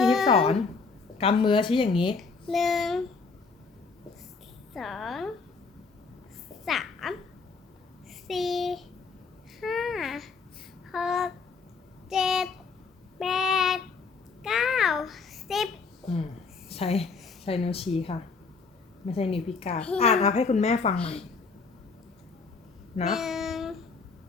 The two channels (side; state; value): right; quieter; 4.7 dB